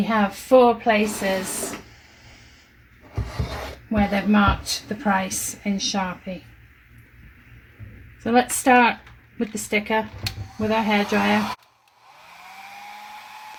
have 4 places where they've marked the price in Sharpie. So let's start with the sticker with our hairdryer.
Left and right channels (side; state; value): both; identical; correlation 1.00